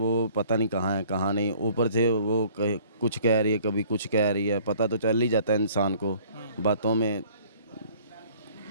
पता नहीं कहाँ है कहाँ नहीं, ऊपर से वो कुछ कह रही है कभी कुछ कह रही है, पता तो चल ही जाता है इंसान को। बातों में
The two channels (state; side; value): inverted; both; correlation -0.54